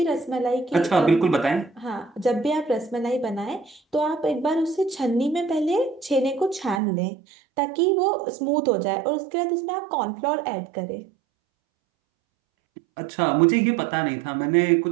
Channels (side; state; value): left; drops out; at 6.8 s